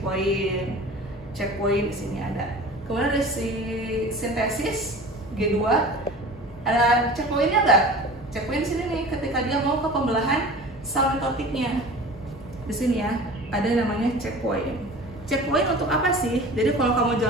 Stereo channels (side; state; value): both; normal; correlation 0.38